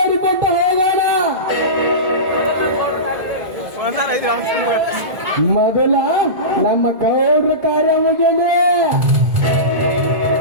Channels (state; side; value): late; left; 2.0 ms